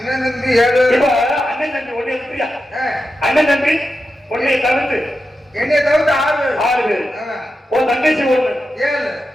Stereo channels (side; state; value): both; normal; correlation 0.90